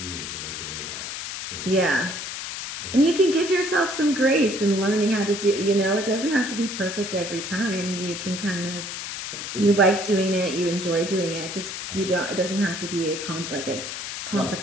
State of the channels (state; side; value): noise; left; hiss, 6 dB below the sound